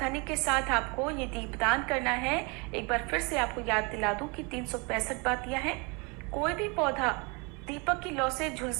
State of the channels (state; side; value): quieter; left; 30.1 dB